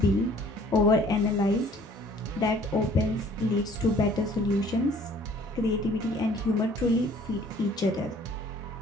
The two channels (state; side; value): normal; both; correlation 0.55